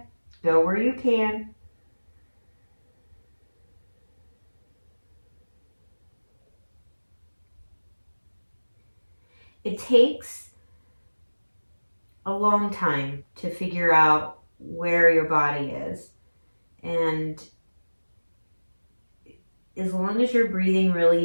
go where you can. It takes a long time to figure out where your body is. And as long as you're breathing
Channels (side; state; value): both; inverted; correlation -1.00